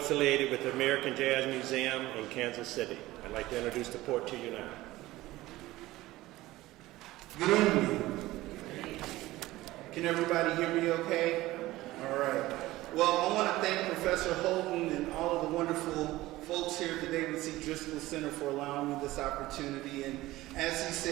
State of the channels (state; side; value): quieter; left; 17.6 dB